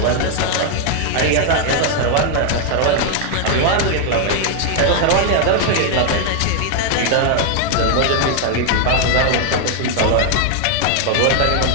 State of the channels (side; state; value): both; different; correlation 0.00